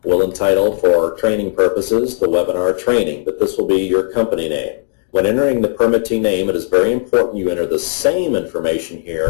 We'll entitle, for training purposes, the webinar training, but this will be your company name. When entering the permittee name, it is very important you enter the same information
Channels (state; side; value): silent; right; digital silence